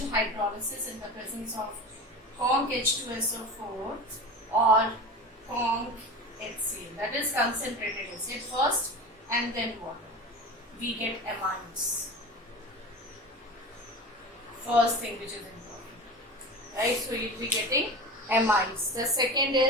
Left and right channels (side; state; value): both; normal; correlation 0.31